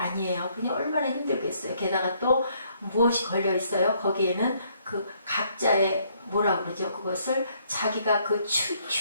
그니 얼마나 힘들겠어요. 게다가 또 무엇이 걸려 있어요? 거기에는 그 각자의 뭐라 그러죠? 그것을 자기가 그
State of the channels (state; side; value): inverted; both; correlation -0.68